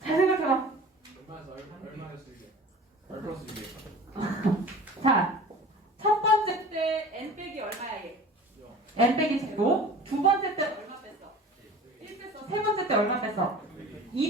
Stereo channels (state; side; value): normal; both; correlation 0.41